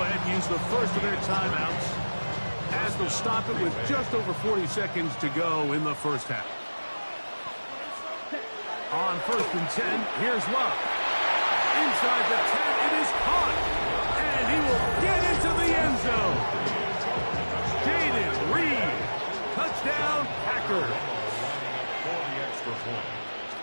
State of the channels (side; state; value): both; inverted; correlation -1.00